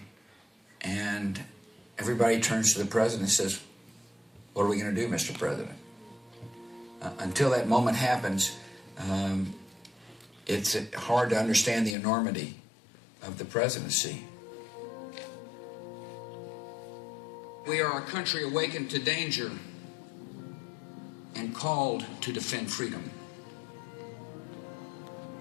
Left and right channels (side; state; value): right; drops out; at 12.0 s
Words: and everybody turns to the president and says, "What are we going to do, Mr. President?" Until that moment happens, it's hard to understand the enormity of the presidency. We are a country awakened to danger and called to defend freedom.